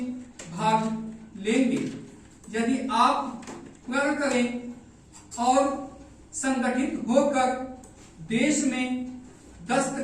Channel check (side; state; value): both; identical; correlation 1.00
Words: भाग लेंगे। यदि आप प्रण करें और संगठित होकर देश में